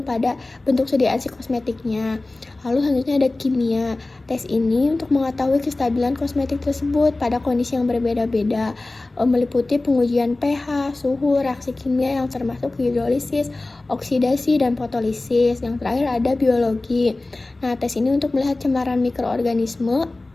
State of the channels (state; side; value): quieter; right; 3.0 dB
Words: pada bentuk sediaan si kosmetiknya. Lalu selanjutnya ada kimia. Tes ini untuk mengetahui kestabilan kosmetik tersebut pada kondisi yang berbeda-beda, meliputi pengujian pH, suhu, reaksi kimia yang termasuk hidrolisis, oksidasi, dan fotolisis. Yang terakhir ada biologi. Nah, tes ini untuk melihat cemaran mikroorganisme,